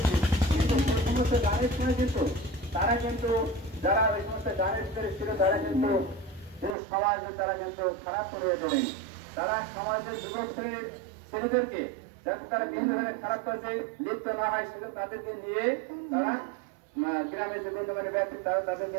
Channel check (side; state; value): left; drops out; at 6.8 s